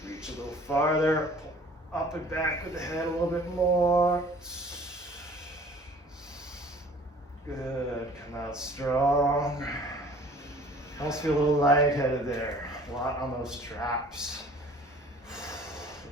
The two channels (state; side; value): normal; both; correlation 0.50